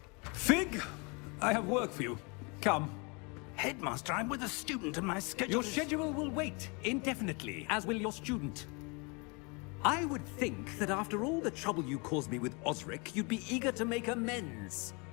Fig! I have work for you. Come. Headmaster, I'm with a student and my schedule Your schedule will wait indefinitely, as will your student. I would think that after all the trouble you caused me with Osric, you'd be eager to make amends.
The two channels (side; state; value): right; quieter; 30.9 dB